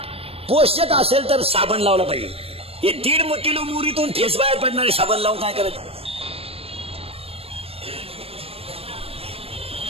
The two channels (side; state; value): left; late; 0.28 ms